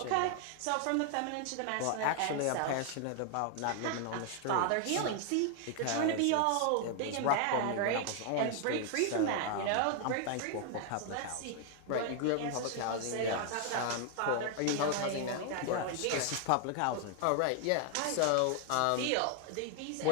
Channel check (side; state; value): both; different; correlation 0.00